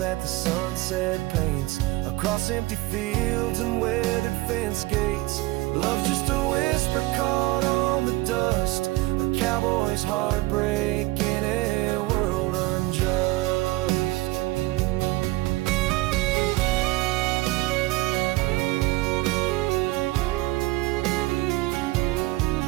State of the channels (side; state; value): left; quieter; 20.0 dB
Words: the sunset paints across empty fields and weathered fence gates. Love's just a whisper caught on the dust, a cowboy's heartbreak in a world unjust.